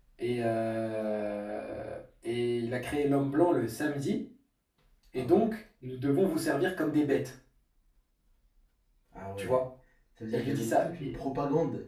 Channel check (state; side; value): identical; both; correlation 1.00